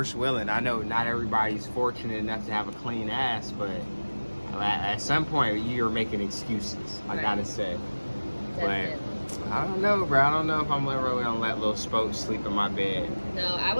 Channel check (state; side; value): inverted; both; correlation -1.00